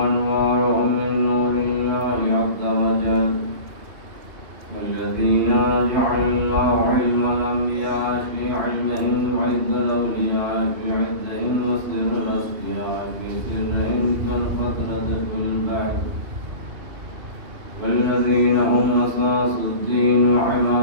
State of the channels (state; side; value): late; left; 2.6 ms